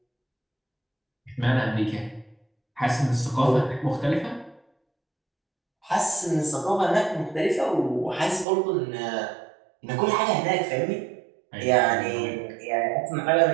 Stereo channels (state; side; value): drops out; left; at 8.5 s